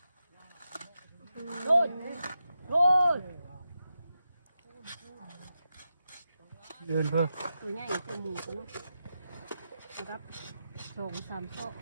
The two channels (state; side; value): inverted; both; correlation -0.89